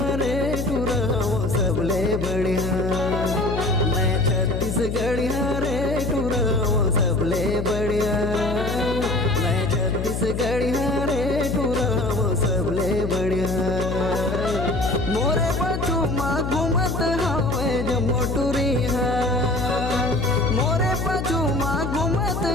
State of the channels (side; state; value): left; noise; hum, 3 dB below the sound